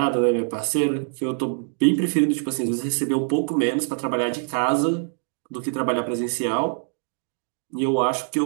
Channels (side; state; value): left; silent; 63 dB below the other